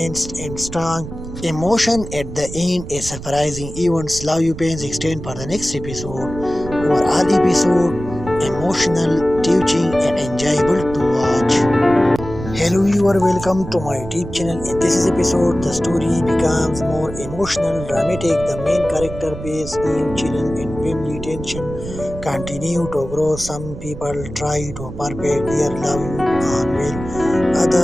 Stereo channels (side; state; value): right; noise; rumble, 11 dB below the sound